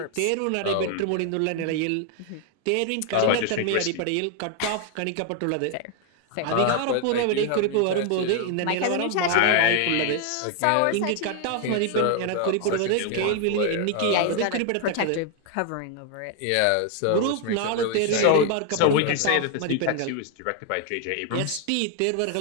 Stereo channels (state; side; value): different; both; correlation 0.00